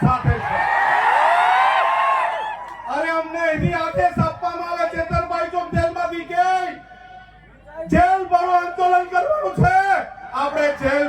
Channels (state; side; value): identical; both; correlation 1.00